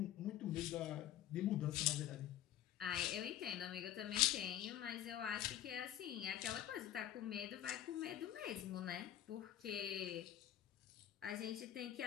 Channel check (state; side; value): quieter; right; 11.7 dB